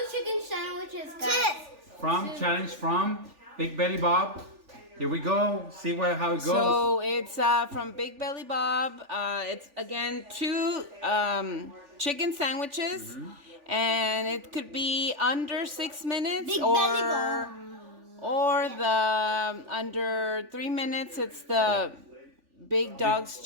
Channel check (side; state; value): left; late; 3.4 ms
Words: chicken sandwiches, guys. Challenge from Big Belly Bob. Here we go. See how it goes. So it's from Big Belly Bob. It's again 2 chicken sandwiches. And it could be under 6 minutes or the under 3 minutes. It's the Big Dogs